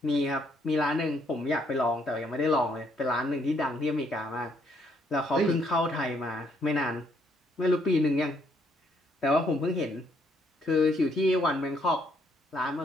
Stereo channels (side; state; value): both; normal; correlation 0.70